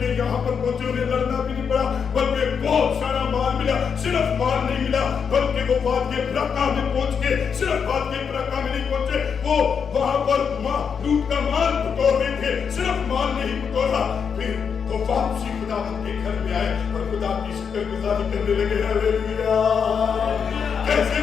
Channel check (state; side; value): quieter; right; 6.6 dB